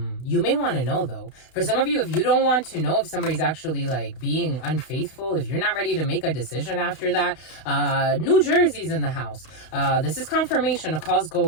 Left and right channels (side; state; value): right; late; 32 ms